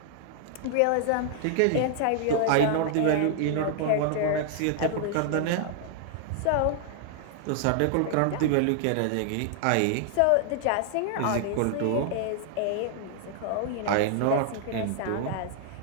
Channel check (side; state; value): both; different; correlation 0.00